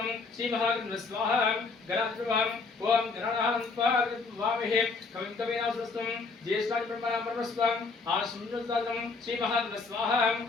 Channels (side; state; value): right; quieter; 4.3 dB